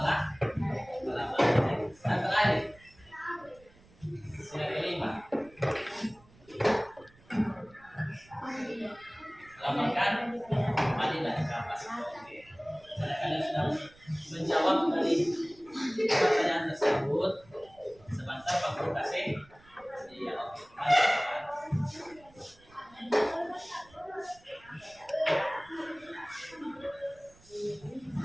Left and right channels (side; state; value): right; noise; rumble, 27 dB below the sound